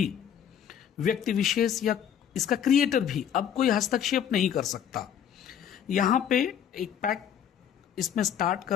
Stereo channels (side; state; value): right; quieter; 9.0 dB